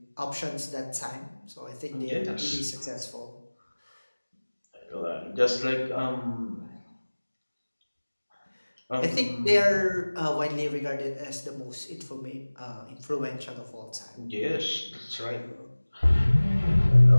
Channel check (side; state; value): both; inverted; correlation -1.00